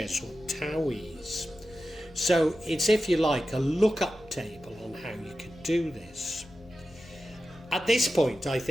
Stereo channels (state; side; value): normal; both; correlation 0.92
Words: or towies. So it's, if you like, a lookup table on how you can do this. At this point, I